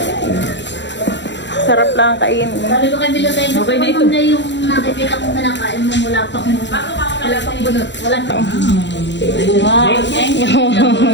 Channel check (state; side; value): late; right; 0.52 ms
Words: Sarap lang kainin. Sabi ko kay Milo tayo, okay na ito. Na yung nakikita kong kinakain mo mula pang bunot. Wala pa. Wow, thank you.